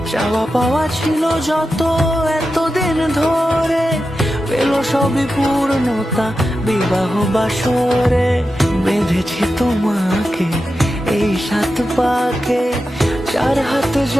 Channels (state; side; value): normal; both; correlation 0.91